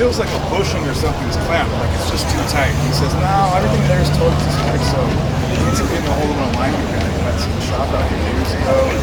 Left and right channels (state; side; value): identical; both; correlation 1.00